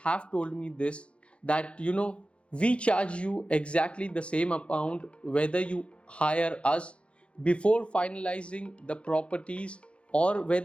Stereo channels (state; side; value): late; right; 0.059 ms